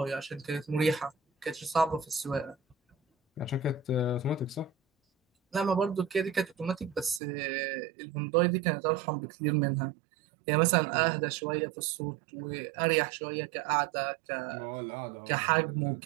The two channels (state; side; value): drops out; left; at 7.2 s